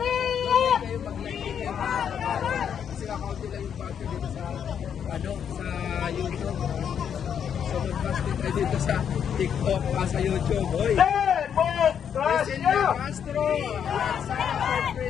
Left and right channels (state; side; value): quieter; right; 8.2 dB